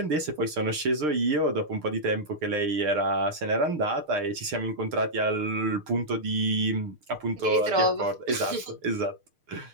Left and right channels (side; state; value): left; late; 6.6 ms